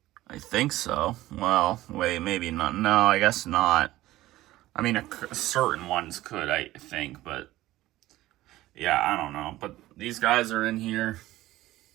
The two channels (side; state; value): left; quieter; 16.3 dB